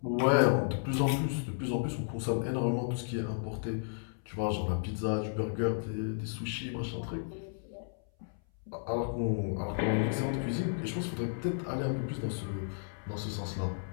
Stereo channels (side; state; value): right; silent; 56 dB below the other